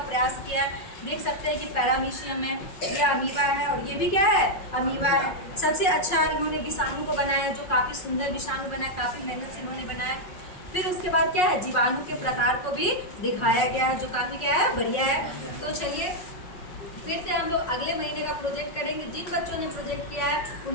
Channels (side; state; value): right; late; 5.4 ms